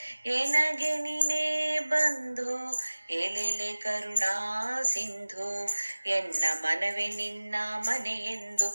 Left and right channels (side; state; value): both; inverted; correlation -1.00